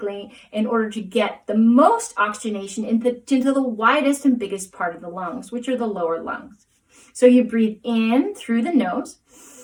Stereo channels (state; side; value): identical; both; correlation 1.00